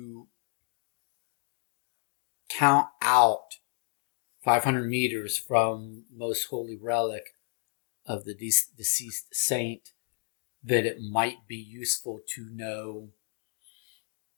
count out 500 meters from most holy relic of the deceased saint, that it might be useful to know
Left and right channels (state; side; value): silent; right; 56 dB below the other